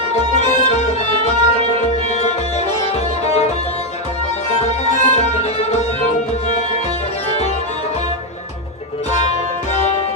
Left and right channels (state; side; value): normal; both; correlation 0.04